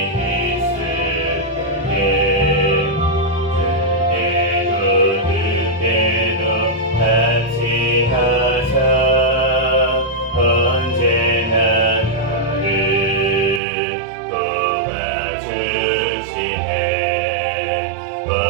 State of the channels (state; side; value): drops out; left; at 13.6 s